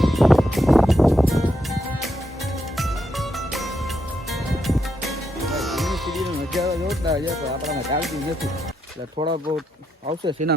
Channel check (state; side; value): normal; both; correlation 0.81